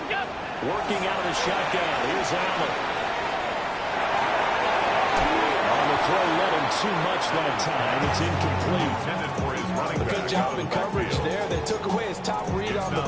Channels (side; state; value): both; identical; correlation 1.00